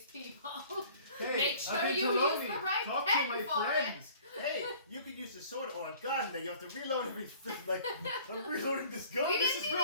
people. Hey, Make sure I've been you to use Lonely. the right Talk pen to my for friends. Hey, you could use a sword or a gun that you have to reload every. Like, I'm reloading this gun. We this didn't is even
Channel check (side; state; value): both; inverted; correlation -0.50